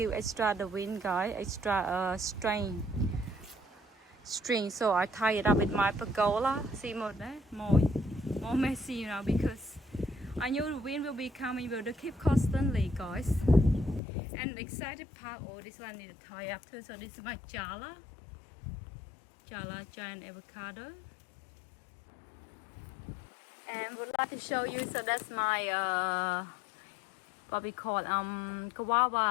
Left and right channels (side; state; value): right; drops out; at 14.0 s